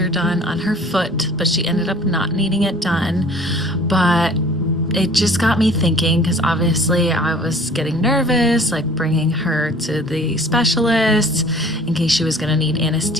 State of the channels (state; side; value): normal; both; correlation 0.50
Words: done on her foot, but she ended up not needing it done. But it just got me thinking, because obviously I was getting nervous, like bringing her to the specialist in case she was going to need